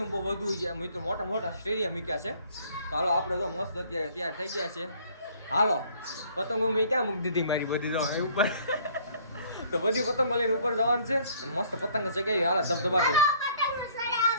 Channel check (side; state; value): both; inverted; correlation -0.58